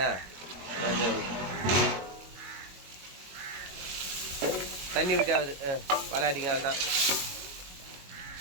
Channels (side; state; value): left; late; 22 ms